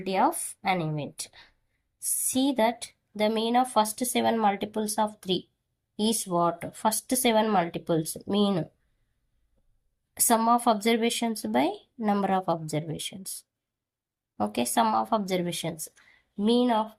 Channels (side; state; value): both; identical; correlation 1.00